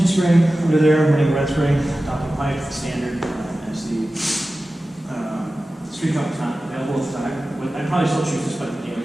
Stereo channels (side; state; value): both; normal; correlation 0.95